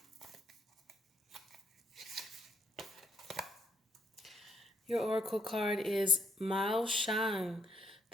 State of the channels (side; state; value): both; normal; correlation 0.72